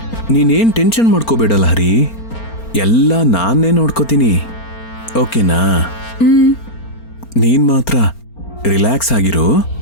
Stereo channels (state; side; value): late; right; 4.4 ms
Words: ನೀನೇನ್ ಟೆನ್ಷನ್ ಮಾಡ್ಕೋಬೇಡ ಲಹರಿ, ಎಲ್ಲ ನಾನೇ ನೋಡ್ಕೋತೀನಿ, ಓಕೆನಾ? ನೀನ್ ಮಾತ್ರ ರಿಲ್ಯಾಕ್ಸ್ ಆಗಿರು.